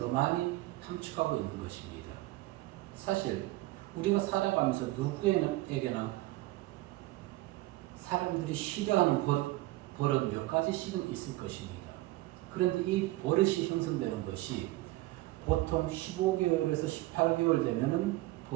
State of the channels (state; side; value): quieter; left; 18.6 dB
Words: 많이 함축하고 있는 것입니다. 사실 우리가 살아가면서 누구에게나 사람들이 싫어하는 버릇 몇 가지씩은 있을 것입니다. 그런데 이 버릇이 형성되는 것이 보통 15개월에서 18개월 되면은